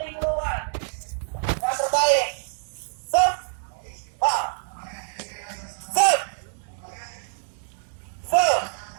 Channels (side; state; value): left; silent; 61 dB below the other